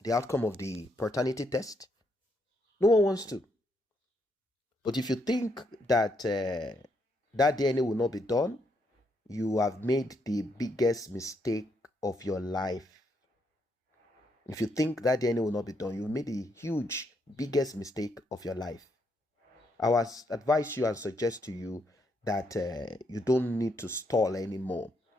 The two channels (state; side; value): normal; both; correlation 0.76